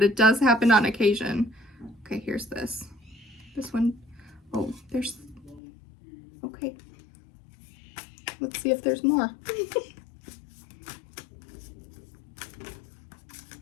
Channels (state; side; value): drops out; right; at 5.6 s